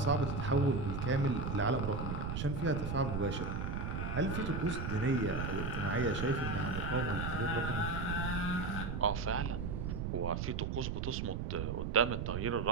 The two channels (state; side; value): noise; right; rumble, 2 dB below the sound